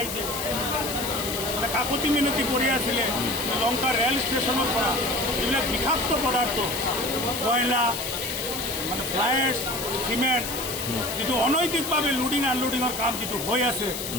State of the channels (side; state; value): left; noise; hiss, 6 dB below the sound